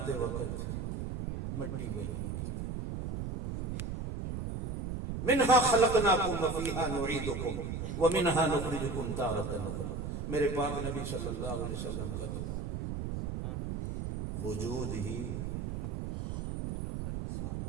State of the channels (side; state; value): right; noise; rumble, 3 dB below the sound